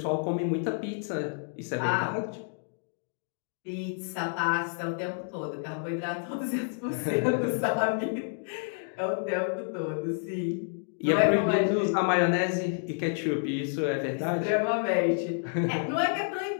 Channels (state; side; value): silent; right; digital silence